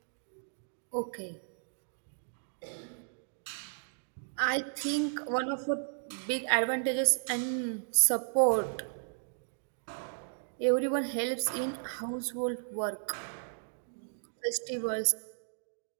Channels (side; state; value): left; silent; digital silence